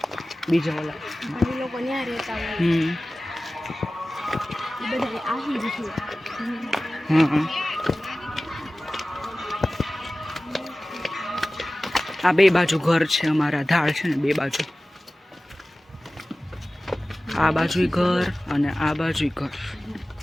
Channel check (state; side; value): normal; both; correlation 0.97